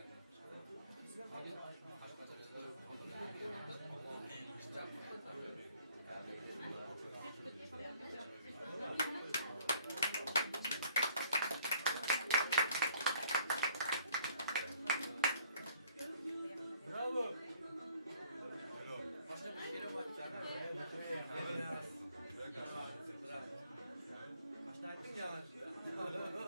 Bravo. Başka bir şeye bakacağım. Kaçta ettin ya?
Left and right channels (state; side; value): inverted; both; correlation -0.59